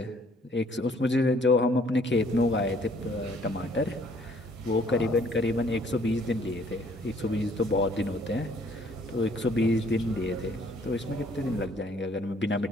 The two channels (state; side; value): normal; both; correlation 0.61